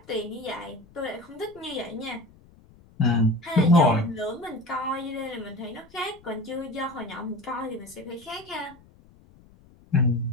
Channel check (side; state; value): left; noise; rumble, 26 dB below the sound